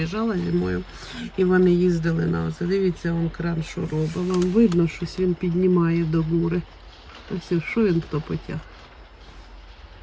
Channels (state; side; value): identical; both; correlation 1.00